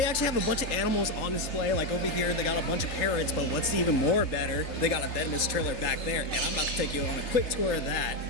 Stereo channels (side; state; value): right; late; 3.5 ms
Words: actually have a bunch of animals on display. Like over here, they got a bunch of parrots, but what's even more better, they got a venomous trailer back there, and I'm about to take you on a quick tour of that.